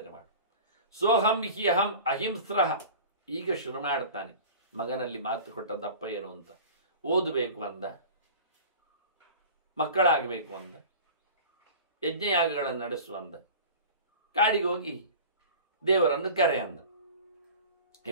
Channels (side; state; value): both; inverted; correlation -0.39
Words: ಮಾಡು. ಸೋಹಂ ಹಿ ಅಹಂ ಅಹಿಂಸ್ರಃ. ಈಗ ಶುರು ಮಾಡ್ತಾನೆ. ಮಗನಲ್ಲಿ ಮಾತು ಕೊಟ್ಟ ದಪ್ಪ ಏನು ಅಂತ. ಓದಬೇಕು ಅಂದ, ಮಕ್ಕಳಾಗಬೇಕು ಅಂದ, ಯಜ್ಞಯಾಗಗಳನ್ನು ನಡೆಸುವಂದ, ಕಾಡಿಗೆ ಹೋಗಿ ದೇವರನ್ನು ಕರೆ ಅಂದ.